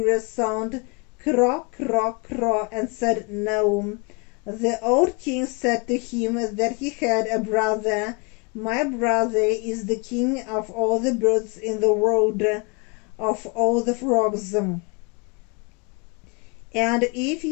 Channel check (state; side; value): quieter; right; 30.8 dB